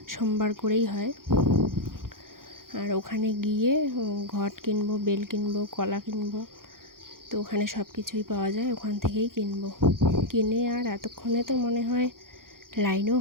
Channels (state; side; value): late; left; 0.91 ms